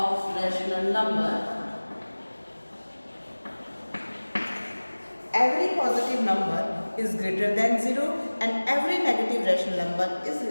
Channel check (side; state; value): both; inverted; correlation -1.00